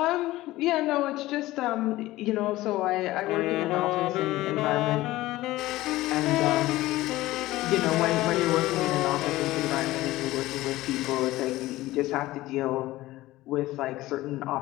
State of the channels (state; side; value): quieter; right; 17.3 dB